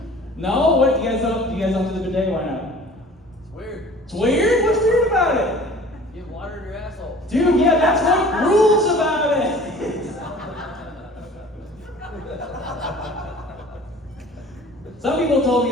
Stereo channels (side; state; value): both; normal; correlation 0.46